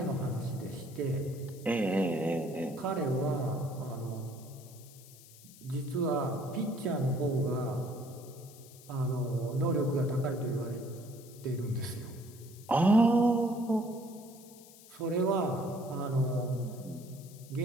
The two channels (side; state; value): left; noise; hiss, 21 dB below the sound